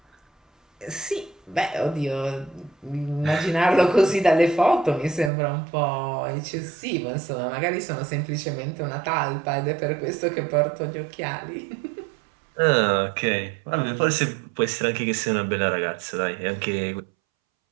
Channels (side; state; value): left; drops out; at 5.3 s